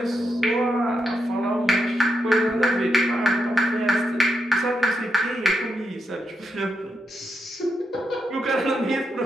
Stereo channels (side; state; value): both; normal; correlation 0.83